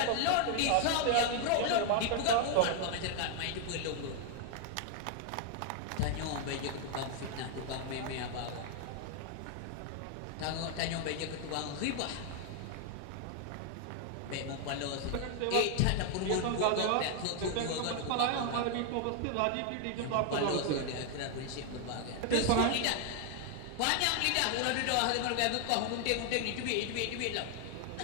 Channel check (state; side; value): different; both; correlation 0.00